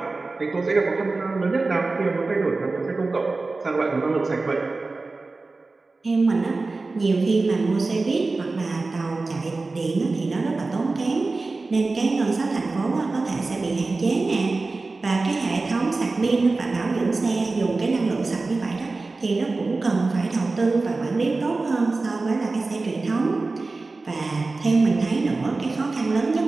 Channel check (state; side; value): quieter; left; 3.6 dB